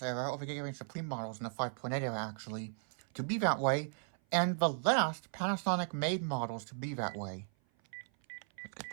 era, or the Gigarange Supreme models in the 5.8 era actually, to be that way, and the last Panasonic made models to be that way. Let's get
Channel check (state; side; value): silent; left; 54 dB below the other